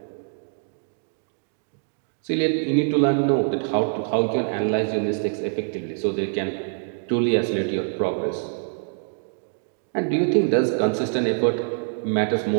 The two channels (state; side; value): silent; left; digital silence